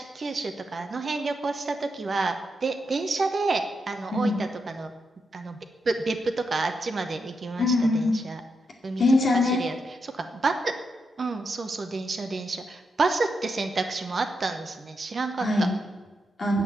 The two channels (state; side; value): normal; both; correlation 0.84